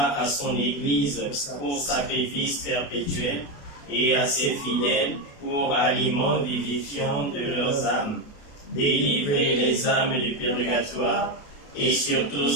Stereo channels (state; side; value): late; right; 28 ms